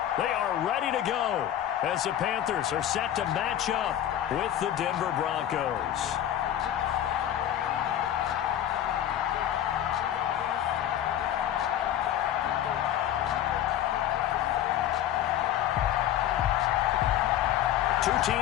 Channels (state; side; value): quieter; right; 11.4 dB